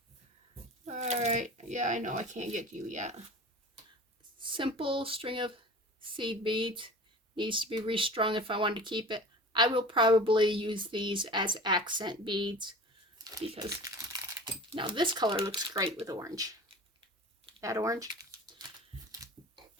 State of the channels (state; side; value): normal; both; correlation 0.38